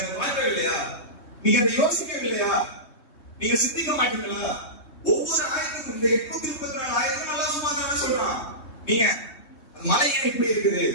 அதை பார்க்கவில்லையா? நீங்க அதை யோசிக்கவில்லையா? நீங்க சிந்திக்க மாட்டீங்களா? ஒவ்வொரு ஆயத்துக்கும் இந்த 834 ஆயத்தும் அல்லாஹ் சுப்ஹானஹு வ தஆலா சொல்றான், நீங்க மலை ஏன் இப்படி இருக்குது,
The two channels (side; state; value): right; late; 3.2 ms